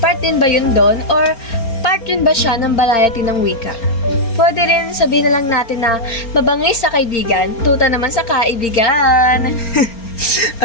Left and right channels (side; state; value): right; late; 4.3 ms